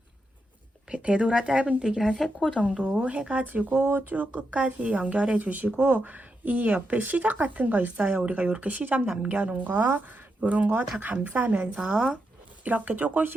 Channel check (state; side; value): normal; both; correlation 0.85